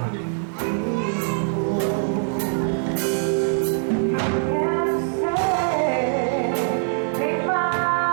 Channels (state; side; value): silent; left; digital silence